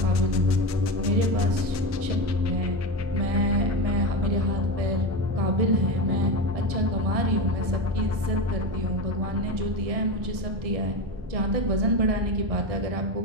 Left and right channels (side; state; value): left; late; 1.6 ms